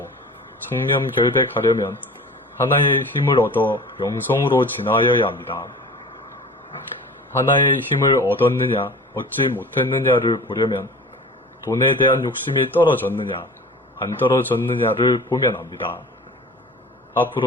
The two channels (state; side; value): normal; both; correlation 0.39